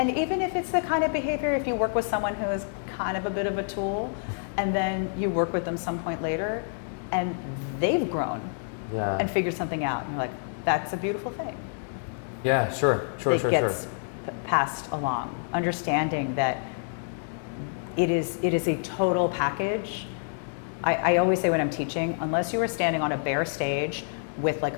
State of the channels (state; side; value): silent; right; digital silence